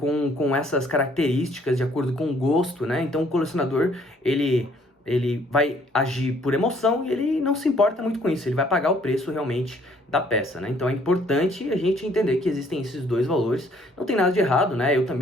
essas características, de acordo com o gosto, né? Então o colecionador, ele vai agir por emoção e ele não se importa muito com isso, ele vai pagar o preço realmente da peça, né? Então é importante a gente entender que existem esses dois valores, não tem nada de errado, né? Eu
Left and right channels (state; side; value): normal; both; correlation 0.62